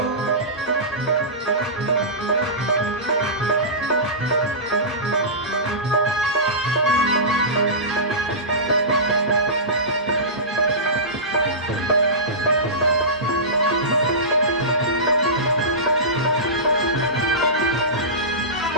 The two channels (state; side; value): normal; both; correlation -0.20